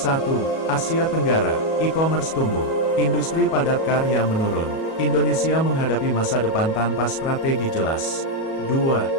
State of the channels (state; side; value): late; right; 37 ms